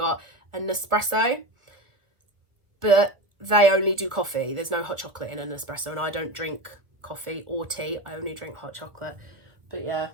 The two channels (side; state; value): left; late; 1.4 ms